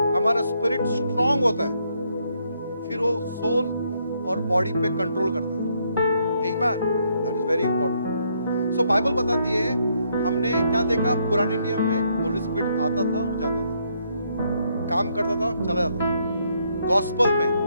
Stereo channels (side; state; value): both; inverted; correlation -0.73